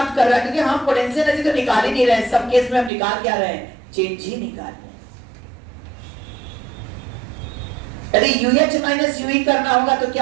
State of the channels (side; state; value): left; drops out; at 2.9 s